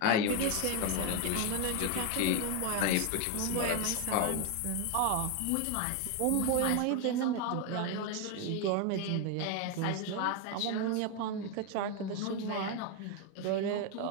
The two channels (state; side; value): different; both; correlation 0.01